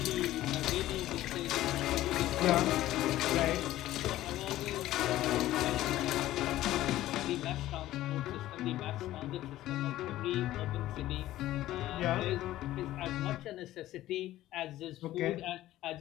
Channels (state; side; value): quieter; right; 14.9 dB